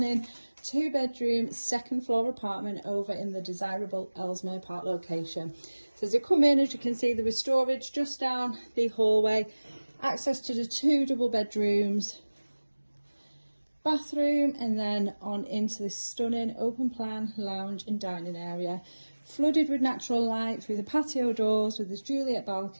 2-bedroom, second floor apartment over in the desirable Ellesmere Park location. So as you come in, as you can see, there is storage just down the hallway, access to the 2 double bedrooms, bathroom, and then on into this stunning open plan lounge and dining area, flooded with natural light through the patio doors with this Juliet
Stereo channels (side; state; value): both; inverted; correlation -1.00